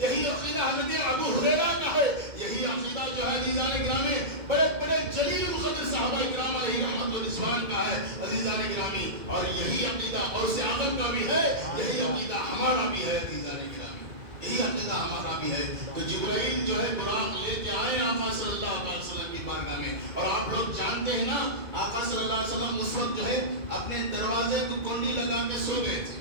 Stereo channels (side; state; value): left; late; 2.0 ms